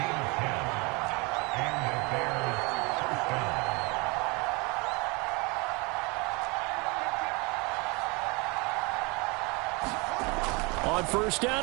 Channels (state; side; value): quieter; left; 28.1 dB